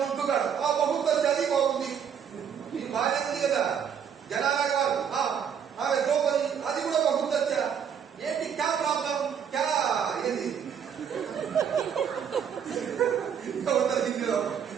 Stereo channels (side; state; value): left; quieter; 7.9 dB